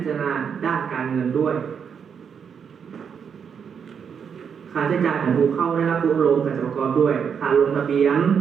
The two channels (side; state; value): left; quieter; 7.0 dB